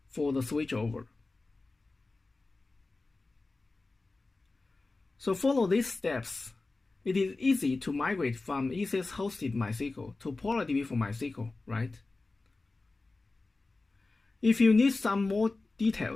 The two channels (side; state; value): right; quieter; 3.4 dB